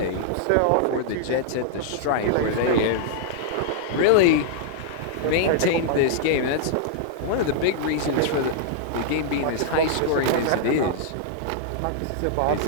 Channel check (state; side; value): different; both; correlation -0.01